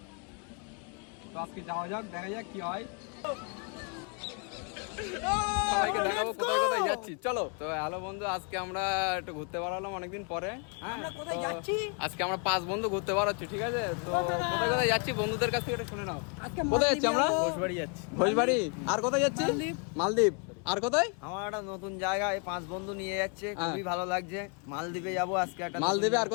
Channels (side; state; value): right; quieter; 37.1 dB